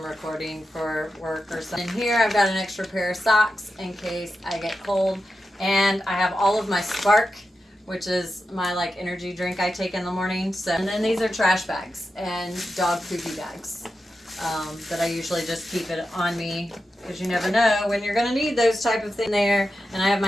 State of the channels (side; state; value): both; normal; correlation 0.90